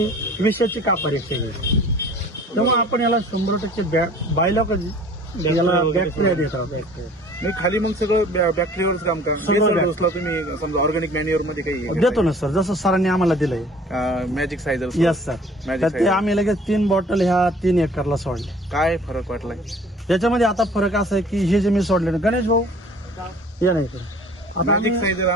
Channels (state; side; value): normal; both; correlation 0.50